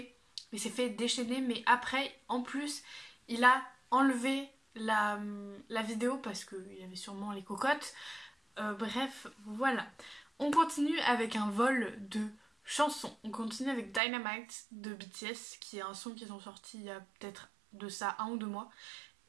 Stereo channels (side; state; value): left; drops out; at 14.0 s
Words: Il s'est fait déchaîner, mais après, en plus, il a enlevé la vidéo parce qu'il y avait sûrement les cocottes. Bref, voilà. On continue avec un vol de chansons. On continue avec Dynamite de BTS, qui est un son qu'ils ont sorti il y a peut-être de ça 1 ou 2 mois.